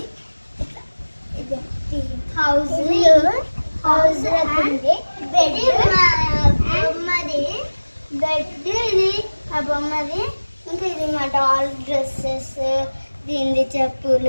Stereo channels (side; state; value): both; inverted; correlation -1.00